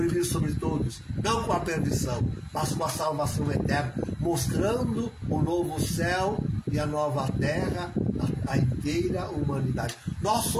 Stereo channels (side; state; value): both; identical; correlation 1.00